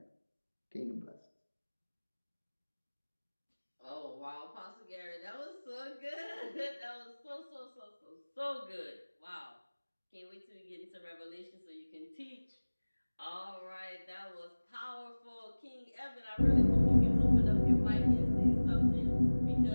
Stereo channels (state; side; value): inverted; both; correlation -1.00